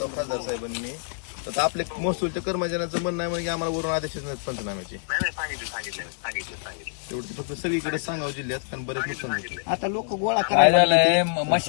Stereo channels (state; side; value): silent; right; digital silence